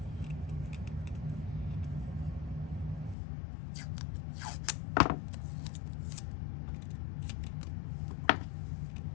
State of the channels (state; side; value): drops out; right; at 3.2 s